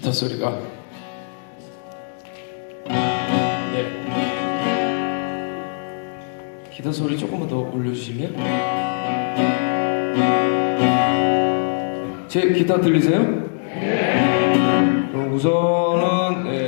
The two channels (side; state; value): right; silent; digital silence